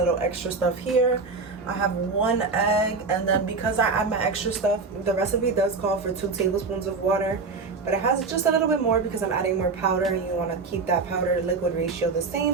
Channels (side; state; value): left; quieter; 4.3 dB